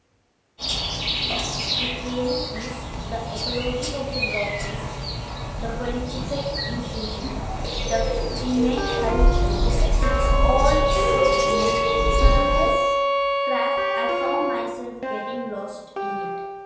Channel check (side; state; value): both; identical; correlation 1.00